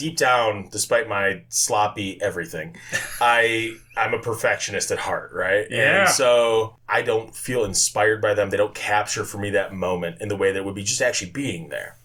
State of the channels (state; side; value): identical; both; correlation 1.00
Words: down, despite my sloppy everything, I'm a perfectionist at heart, right? Yeah. And so I don't feel inspired by them. They don't capture for me that moment in the way that would be just actually being there.